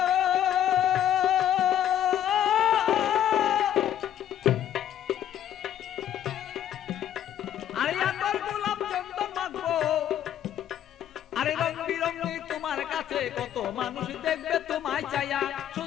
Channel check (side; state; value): right; quieter; 10.7 dB